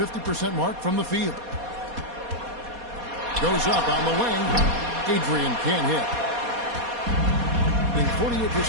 mark from the field. Goes up on the wing. Adrian can't hit.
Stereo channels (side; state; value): left; late; 4.2 ms